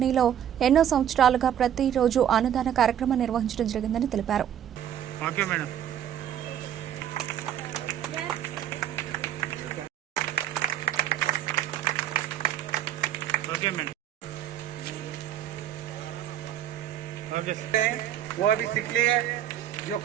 ఎన్నో సంవత్సరాలుగా ప్రతిరోజు అన్నదాన కార్యక్రమం నిర్వహించడం జరిగిందని తెలిపారు. वो अभी सीख लिए, जो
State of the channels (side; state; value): left; quieter; 10.3 dB